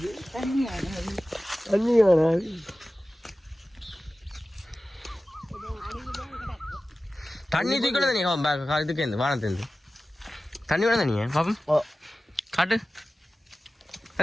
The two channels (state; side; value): normal; both; correlation 0.96